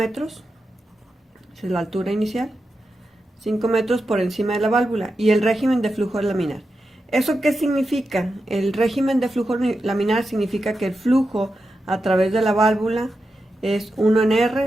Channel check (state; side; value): normal; both; correlation 0.89